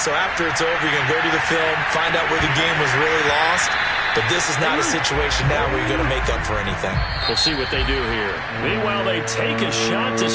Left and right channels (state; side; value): identical; both; correlation 1.00